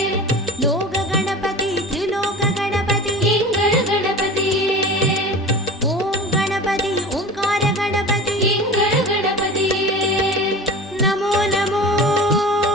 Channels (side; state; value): both; normal; correlation 0.35